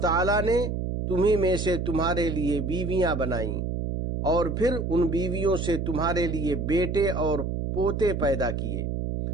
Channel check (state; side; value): noise; right; hum, 2 dB below the sound